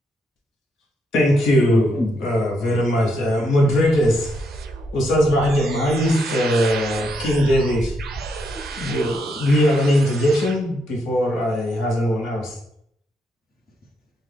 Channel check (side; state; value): both; normal; correlation 0.78